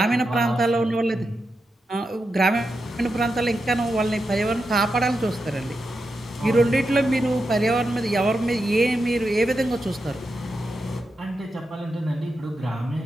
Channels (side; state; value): both; normal; correlation 0.87